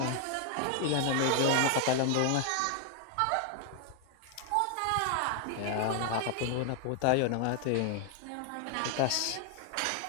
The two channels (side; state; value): both; different; correlation 0.00